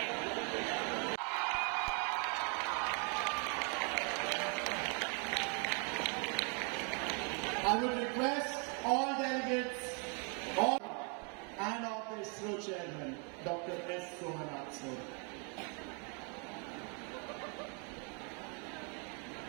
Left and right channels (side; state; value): left; quieter; 37.0 dB